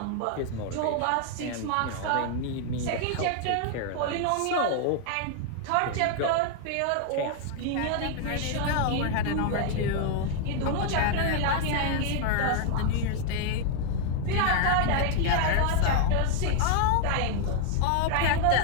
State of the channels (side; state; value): both; different; correlation 0.00